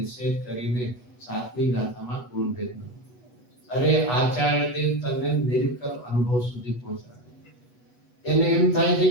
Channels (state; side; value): late; right; 8.2 ms